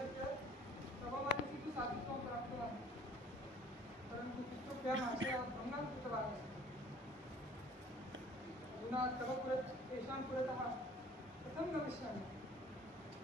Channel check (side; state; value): both; normal; correlation 0.53